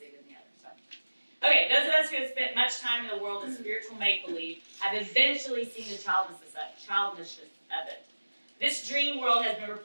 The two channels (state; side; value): inverted; both; correlation -1.00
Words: than the others. So. Okay, those of us who have spent much time in the world of spiritual make-believe have eventually seen the childishness of it. This dream world has been